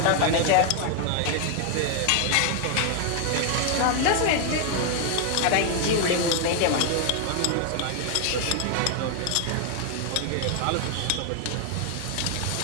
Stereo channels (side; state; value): both; different; correlation 0.00